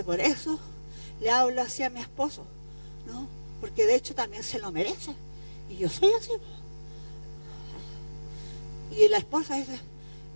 por eso le hablo así a mi esposo, ¿no? Porque de hecho también se lo merece. Y yo soy así. Y la esposa dice,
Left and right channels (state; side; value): inverted; both; correlation -1.00